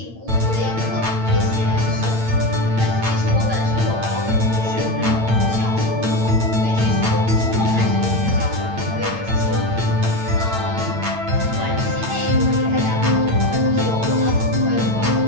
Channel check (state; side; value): late; left; 8.9 ms